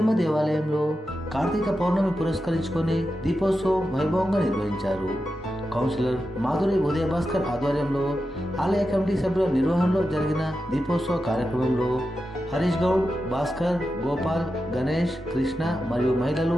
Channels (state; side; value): normal; both; correlation 0.90